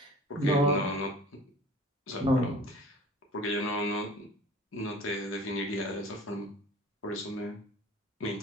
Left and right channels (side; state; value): both; normal; correlation 0.44